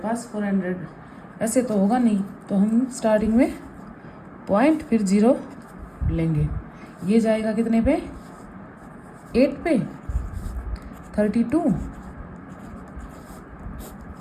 400, ऐसे तो होगा नहीं, तो हम स्टार्टिंग में पॉइंट फिर 0 लेंगे। ये जाएगा कितने पे 8 पे 32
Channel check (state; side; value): identical; both; correlation 1.00